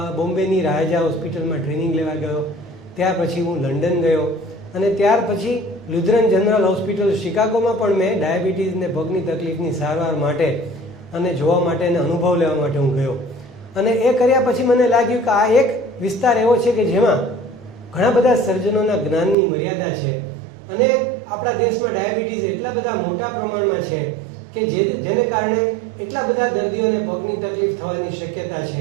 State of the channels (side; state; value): left; drops out; at 19.4 s